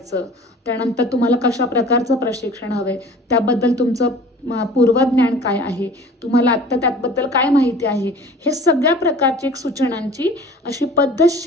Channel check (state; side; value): normal; both; correlation 0.44